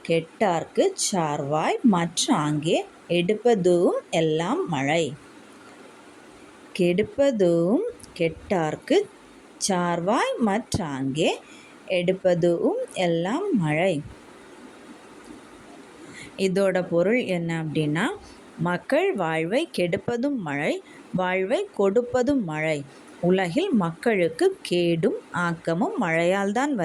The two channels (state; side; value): identical; both; correlation 1.00